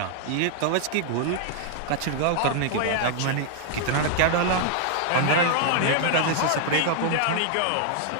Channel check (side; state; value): both; different; correlation 0.00